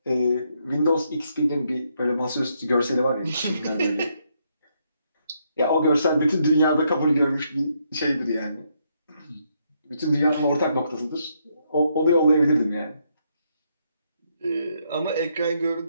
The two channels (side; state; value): both; inverted; correlation -0.76